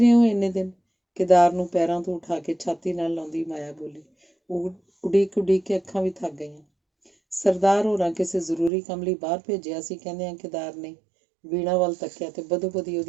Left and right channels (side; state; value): left; drops out; at 8.7 s